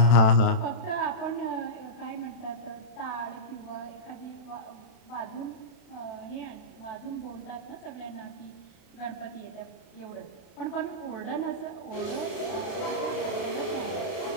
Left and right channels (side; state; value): right; late; 32 ms